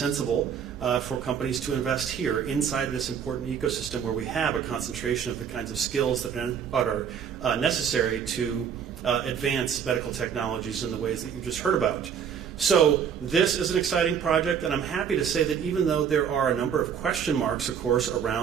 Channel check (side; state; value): left; quieter; 7.7 dB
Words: for companies to invest here inside this important ecosystem where we have a concentration of the kinds of skills that are necessary to advance medical technologies in the ways that you just heard about. So this is an exciting project, and I'm happy to say that even though there are a number of question marks, of course,